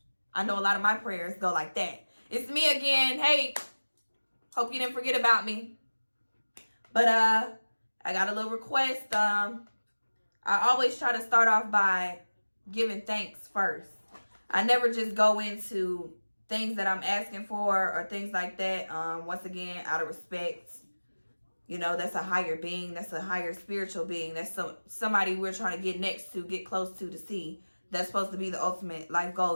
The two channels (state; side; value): inverted; both; correlation -1.00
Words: I know a lot of my prayers go like that. It's me again. Hey, hope you didn't forget about me. But I got a little request. I always try to start off by giving thanks first. I never just go into things that I'm asking for or things like that. Once again, out of respect. You know, that's a higher being. That's a higher spiritual being. That's somebody we're trying to get next to, get close to see. That's supposed to be the ultimate life